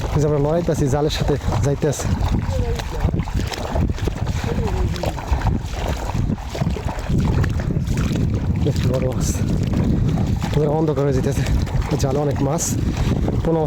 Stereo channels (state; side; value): identical; both; correlation 1.00